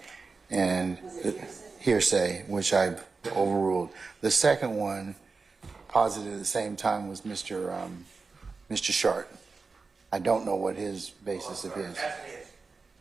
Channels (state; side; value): quieter; left; 4.4 dB